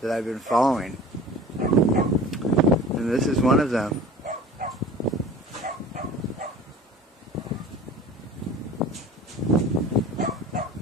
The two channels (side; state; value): both; normal; correlation 0.42